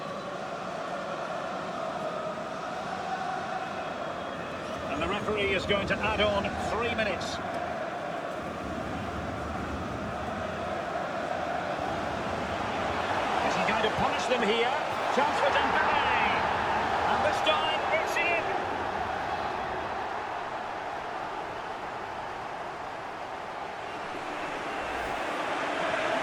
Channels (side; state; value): both; identical; correlation 1.00